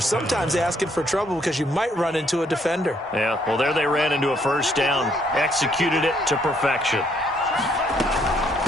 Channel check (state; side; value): normal; both; correlation 0.69